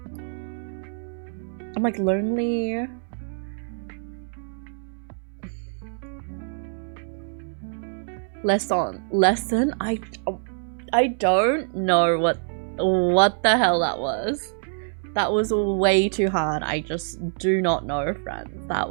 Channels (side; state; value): left; silent; digital silence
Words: I'm like lonely. Lesson? I don't know what the hell that was. That was way too hard. I just do not know, friends. That